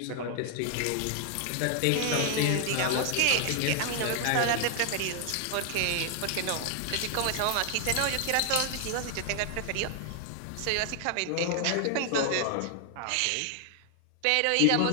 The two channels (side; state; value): both; different; correlation 0.00